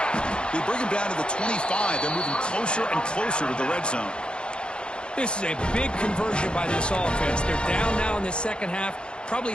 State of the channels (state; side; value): late; right; 0.053 ms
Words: They bring him down to the 25. They're moving closer and closer to the red zone. This is a big conversion by this offense. They're down now in the 2nd half. Probably